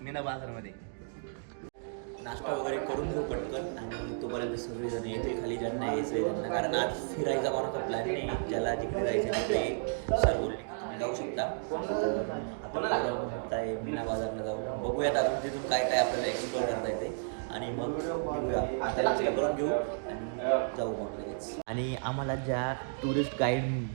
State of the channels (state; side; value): silent; left; digital silence